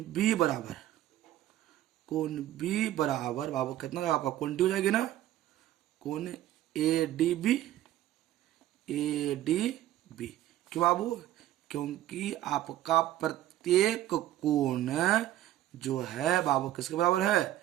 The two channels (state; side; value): quieter; left; 13.6 dB